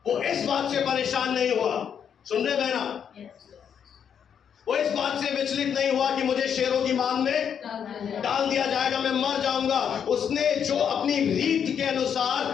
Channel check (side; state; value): right; quieter; 8.0 dB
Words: वो इस बात से परेशान नहीं हुआ। सुन रहे बहना? वो इस बात से विचलित नहीं हुआ कि मुझे शेरों की मान में डाल दिया जाएगा, मैं मर जाऊंगा। उसने जो अपनी रीत के